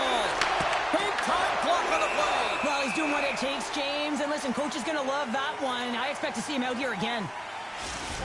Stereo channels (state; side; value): identical; both; correlation 1.00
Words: Big time block on the play. Well, he's doing what it takes, James. And listen, coach is going to love that one. I expect to see him out here again.